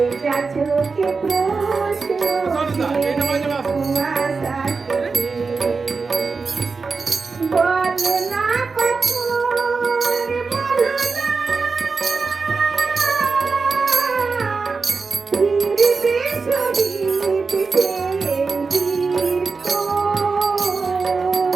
চোখে প্রশ্ন বলো না কখন বলো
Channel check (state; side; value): quieter; left; 4.6 dB